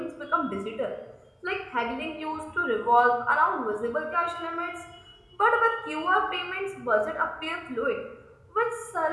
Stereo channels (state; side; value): identical; both; correlation 1.00